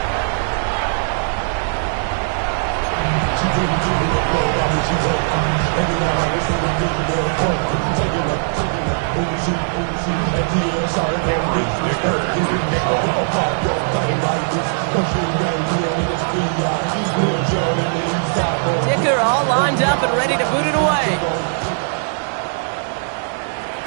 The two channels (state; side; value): silent; left; digital silence